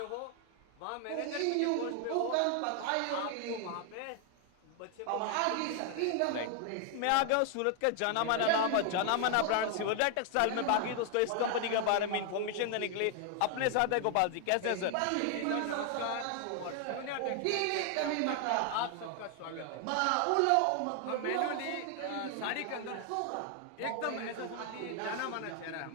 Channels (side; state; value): both; different; correlation 0.00